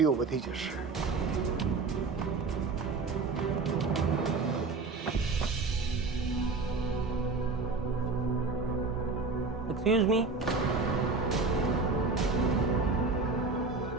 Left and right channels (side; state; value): left; quieter; 4.2 dB